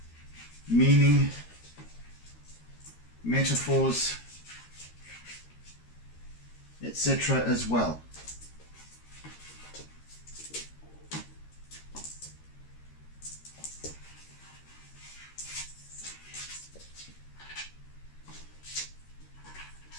meaning, metaphors, etc. as well.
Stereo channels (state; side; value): late; right; 13 ms